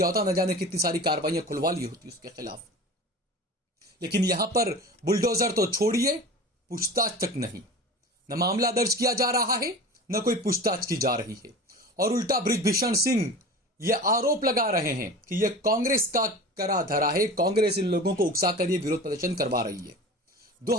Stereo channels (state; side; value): normal; both; correlation 0.35